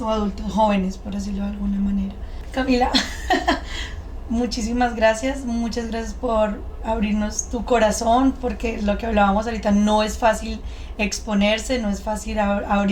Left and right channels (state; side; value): identical; both; correlation 1.00